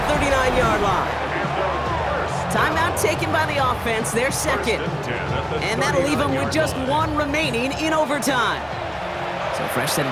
39-yard line. Timeout taken by the offense, their 2nd. And that'll leave them with just 1 remaining in overtime. So fresh set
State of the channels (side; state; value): both; identical; correlation 1.00